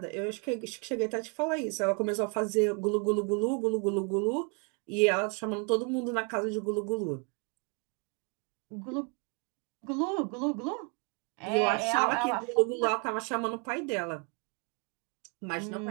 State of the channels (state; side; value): quieter; left; 36.6 dB